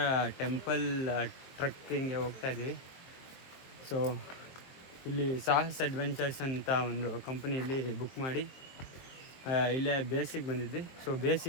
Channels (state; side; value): late; right; 23 ms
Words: ಟೆಂಪಲ್ ಟ್ರಕ್ಕಿಂಗ್ಗೆ ಹೋಗ್ತಾ ಇದ್ದೀವಿ. ಸೊ ಇಲ್ಲಿ ಸಾಹಸ್ ಅಡ್ವೆಂಚರ್ಸ್ ಅಂತ ಒಂದು ಕಂಪನಿಯಲ್ಲಿ ಬುಕ್ ಮಾಡಿ ಇಲ್ಲೇ ಬೇಸಿಗೆ ಬಂದಿದ್ವಿ. ಸೊ